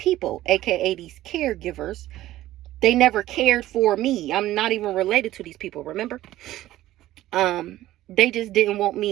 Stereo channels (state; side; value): quieter; left; 14.9 dB